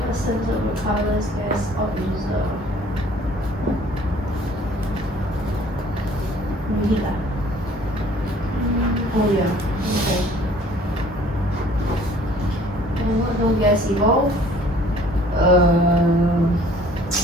of the colors gas or user. Oh yeah. Okay. And what no gas evolve?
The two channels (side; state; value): both; normal; correlation 0.54